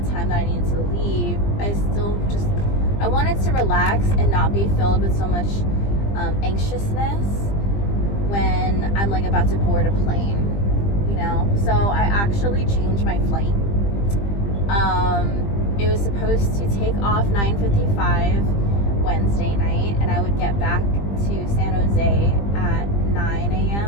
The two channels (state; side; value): late; right; 20 ms